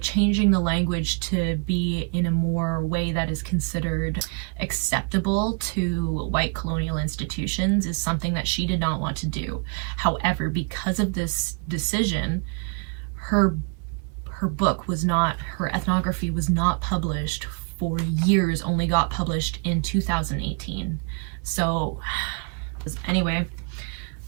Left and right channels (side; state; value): left; quieter; 36.2 dB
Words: changing the language to be in a more way that is considered acceptable to white colonial institutions is something that she did not want to do. However, because of this decision, her book was not, her ethnography was not published for years, only got published in 2018. So anyway,